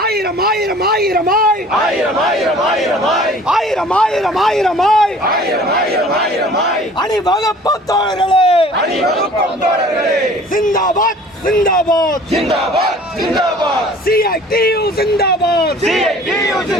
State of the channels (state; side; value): normal; both; correlation 0.49